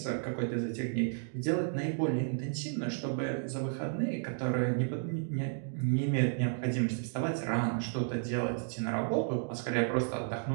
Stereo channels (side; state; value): left; silent; digital silence